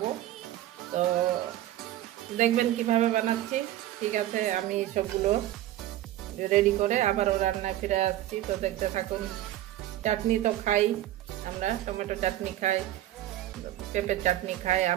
তো দেখবেন কিভাবে বানাচ্ছি। ঠিক আছে, আমি সবগুলো রেডি করে আবারও রান্নায় ফিরে আসছি। তো দেখতে থাকুন। চাটনি তো খাই আমরা, টমেটো চাটনি খাই, পেঁপের চাটনি খাই,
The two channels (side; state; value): left; quieter; 13.9 dB